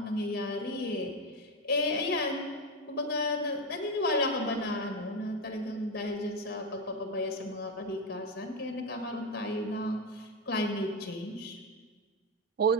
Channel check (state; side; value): normal; both; correlation 0.11